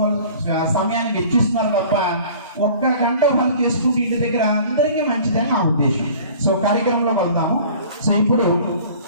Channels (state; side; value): inverted; both; correlation -0.46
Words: సమయాన్ని వెచ్చిస్తున్నారు తప్ప 1 గంట వాళ్ళు చేసుకుంటే ఇంటి దగ్గర అందరికీ మంచిదని నా ఉద్దేశం. సో కార్యక్రమంలోకి వెళ్దాము. సో ఇప్పుడు